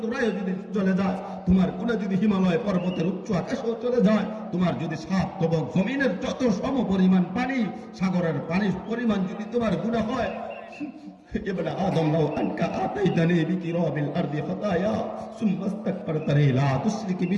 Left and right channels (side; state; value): both; identical; correlation 1.00